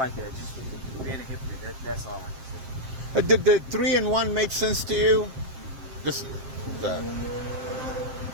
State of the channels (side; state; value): left; late; 7.6 ms